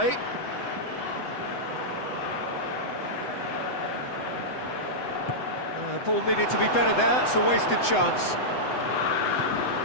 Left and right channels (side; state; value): right; late; 7.9 ms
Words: Ball needed to be better there, it's a wasted chance.